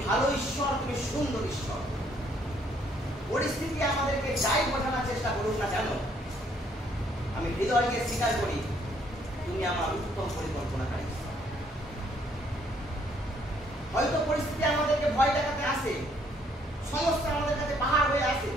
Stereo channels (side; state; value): both; normal; correlation 0.67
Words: ভালো ঈশ্বর, তুমি সুন্দর ঈশ্বর। পরিস্থিতি আমাদেরকে যাই বোঝানোর চেষ্টা করুক না কেন, আমি হৃদয়কে স্বীকার করি তুমি আমার উত্তম পরিকল্পনাকারী। হয়তো পরিস্থিতি আমাদেরকে ভয় দেখাতে আসে, সমস্যা আমাদের কাছে পাহাড় হয়ে আসে,